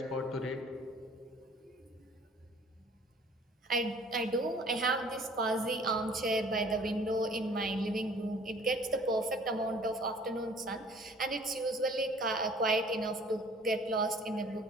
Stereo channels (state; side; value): normal; both; correlation 0.52